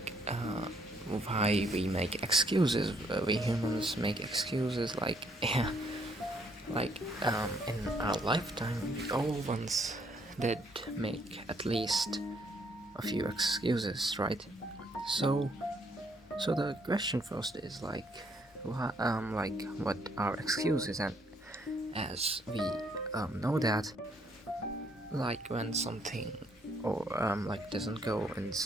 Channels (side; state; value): both; normal; correlation 0.69